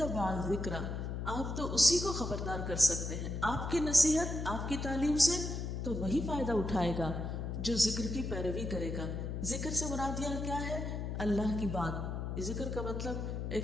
الذکر، آپ تو اسی کو خبردار کر سکتے ہیں، آپ کی نصیحت، آپ کی تعلیم سے تو وہی فائدہ اٹھائے گا جو ذکر کی پیروی کرے گا۔ ذکر سے مراد یہ کیا ہے؟ اللہ کی بات۔ ذکر کا مطلب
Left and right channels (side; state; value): left; noise; hum, 4 dB below the sound